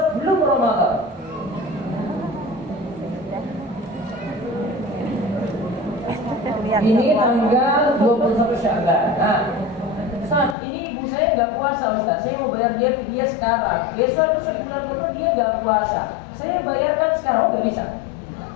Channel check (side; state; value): right; drops out; at 10.6 s